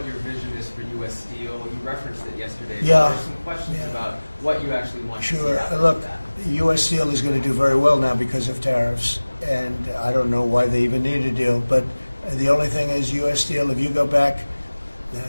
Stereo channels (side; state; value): both; inverted; correlation -1.00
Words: your vision is for U.S. Steel? You referenced it yesterday. Yeah. There's some questions about what you actually want to see Sure. out of Look, that. U.S. Steel is going to do very well now because of tariffs, and I don't know why they even need a deal. But the only thing is, U.S. Steel, if you go back